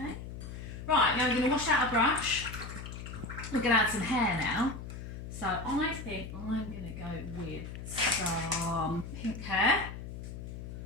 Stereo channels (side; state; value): left; noise; hum, 9 dB below the sound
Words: Right, now we're going to wash out a brush. We're going to add some hair now. So I think I'm going to go with some pink hair.